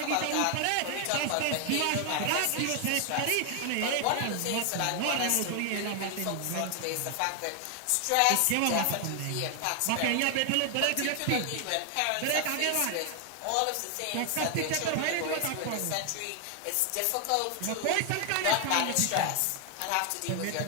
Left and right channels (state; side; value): different; both; correlation 0.00